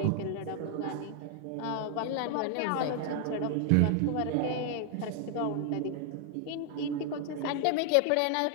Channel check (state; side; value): different; both; correlation 0.00